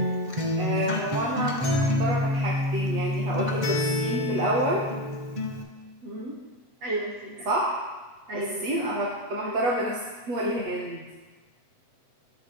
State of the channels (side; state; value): left; late; 7.6 ms